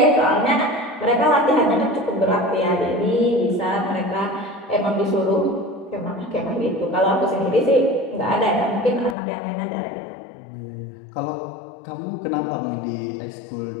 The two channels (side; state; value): right; drops out; at 9.2 s